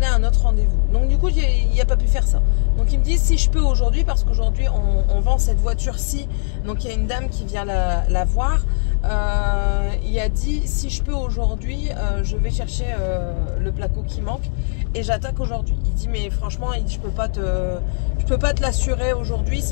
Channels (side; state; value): right; silent; digital silence